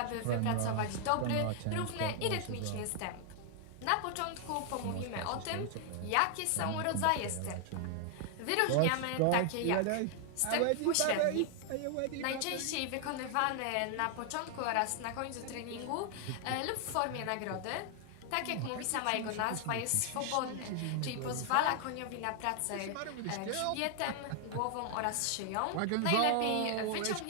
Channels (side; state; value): both; different; correlation 0.00